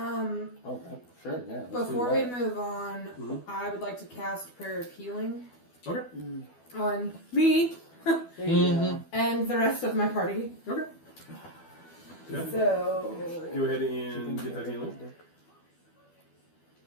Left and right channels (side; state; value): right; late; 12 ms